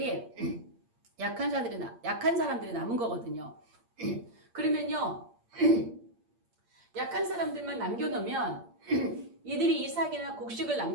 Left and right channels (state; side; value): late; left; 8.6 ms